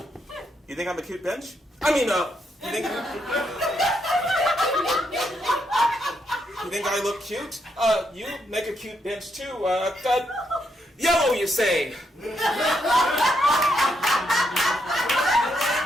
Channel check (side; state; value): both; normal; correlation 0.78